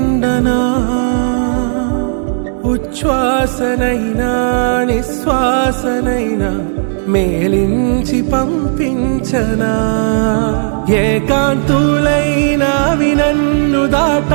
ఉచ్ఛ్వాసనైనా నిశ్వాసనైనా మేలించి పంపించనా ఏకాంతులైనా వినన్ను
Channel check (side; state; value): left; silent; digital silence